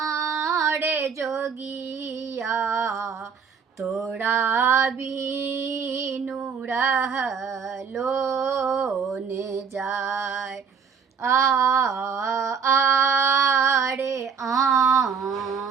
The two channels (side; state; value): left; quieter; 6.3 dB